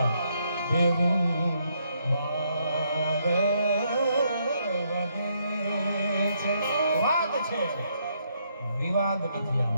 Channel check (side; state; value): both; inverted; correlation -0.74